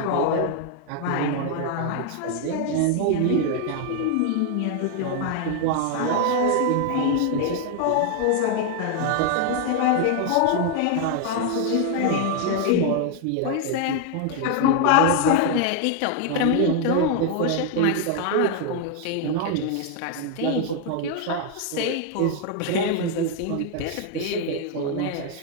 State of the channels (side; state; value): both; different; correlation 0.00